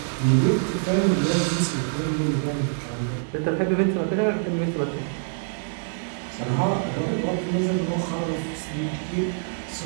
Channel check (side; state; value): left; silent; digital silence